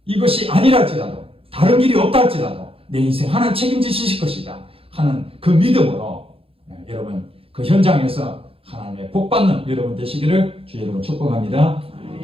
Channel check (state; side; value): late; left; 0.27 ms